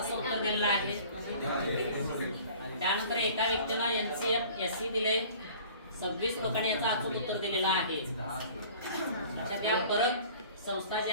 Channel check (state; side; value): inverted; both; correlation -0.48